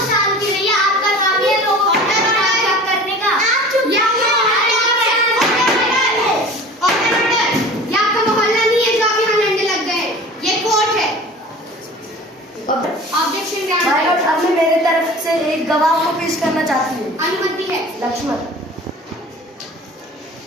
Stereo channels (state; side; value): normal; both; correlation 0.41